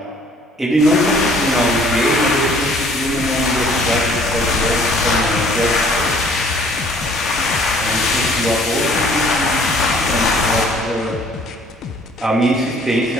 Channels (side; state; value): both; normal; correlation 0.57